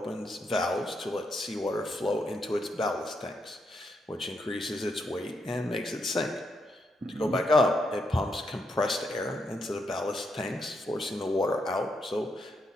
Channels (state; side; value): normal; both; correlation 0.80